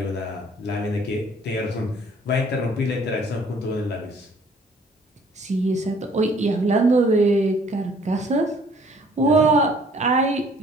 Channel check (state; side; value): normal; both; correlation 0.58